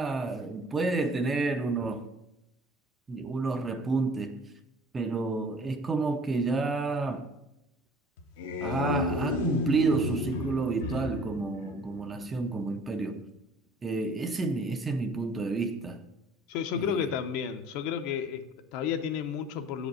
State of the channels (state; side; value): normal; both; correlation 0.50